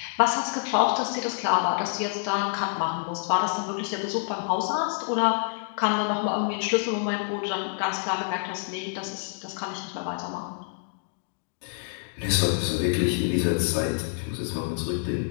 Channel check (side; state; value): right; silent; digital silence